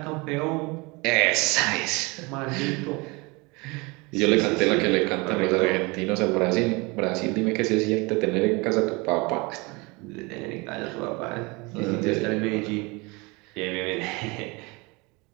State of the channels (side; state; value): left; quieter; 26.4 dB